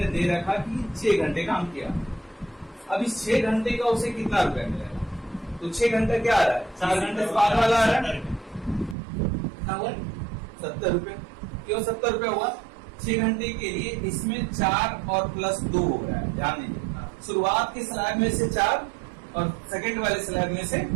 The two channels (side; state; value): left; drops out; at 9.0 s